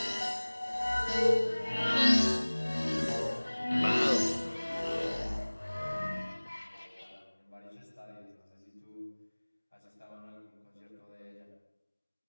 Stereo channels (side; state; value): both; inverted; correlation -1.00